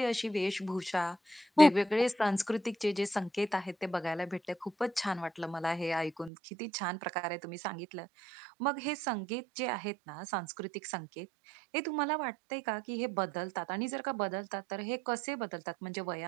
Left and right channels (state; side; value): drops out; left; at 6.3 s